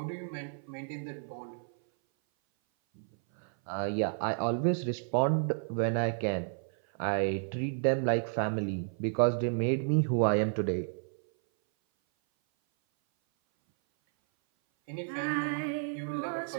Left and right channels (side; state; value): left; silent; 57 dB below the other